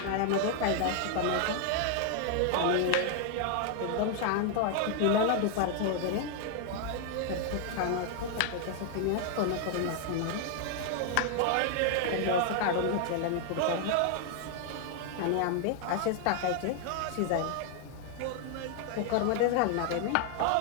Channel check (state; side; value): different; both; correlation 0.00